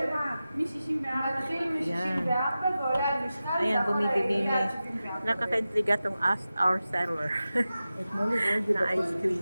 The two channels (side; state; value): both; inverted; correlation -0.94